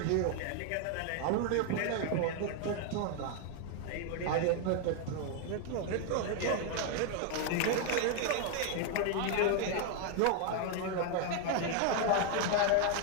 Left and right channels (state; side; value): different; both; correlation 0.00